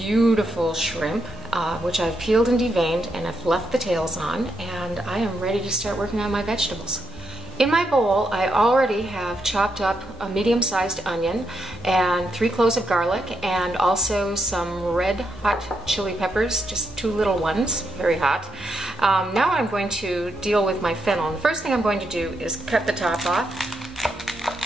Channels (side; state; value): both; normal; correlation 0.80